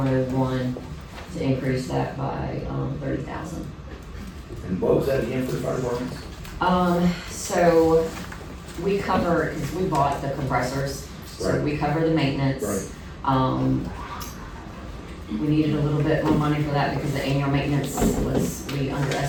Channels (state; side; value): identical; both; correlation 1.00